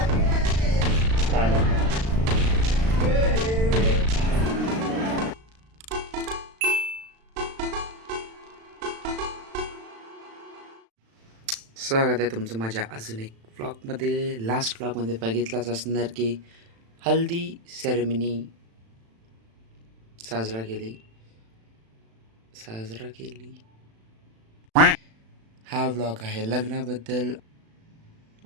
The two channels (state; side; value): late; left; 36 ms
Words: आहे तुमचं माझ्या अजून एक व्लॉगमध्ये. लास्ट व्लॉगमध्ये बघितलाच असणार की हल्दी सेरेमनी साजरा केली. हा व्लॉग आहे लग्नाबद्दल.